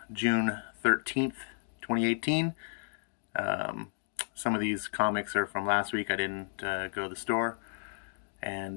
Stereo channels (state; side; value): silent; right; digital silence